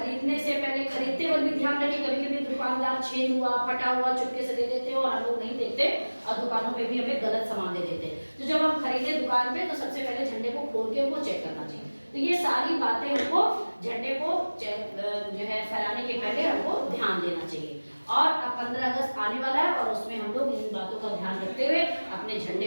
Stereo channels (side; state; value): both; inverted; correlation -1.00